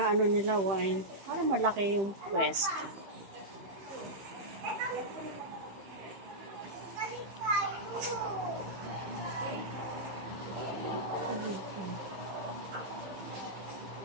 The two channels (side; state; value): left; late; 15 ms